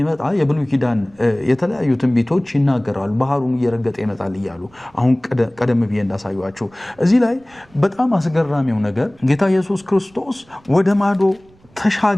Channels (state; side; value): noise; right; rumble, 30 dB below the sound